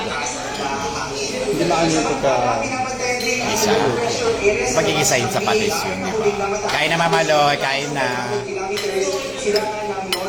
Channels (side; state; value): both; identical; correlation 1.00